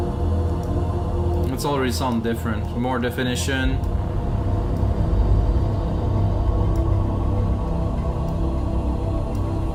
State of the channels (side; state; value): both; identical; correlation 1.00